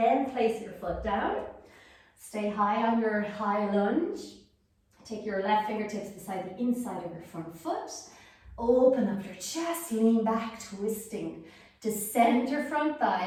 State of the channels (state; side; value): identical; both; correlation 1.00